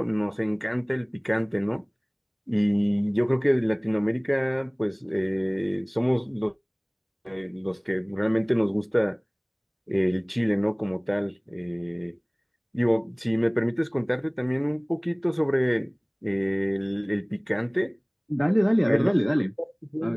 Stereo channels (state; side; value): identical; both; correlation 1.00